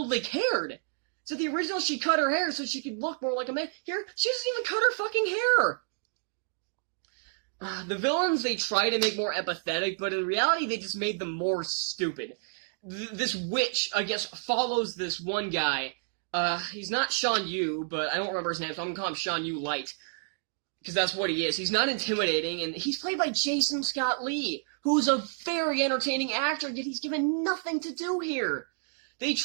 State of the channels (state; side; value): silent; left; digital silence